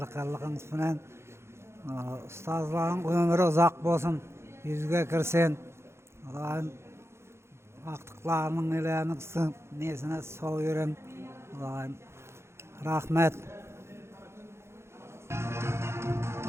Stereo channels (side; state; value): left; late; 0.13 ms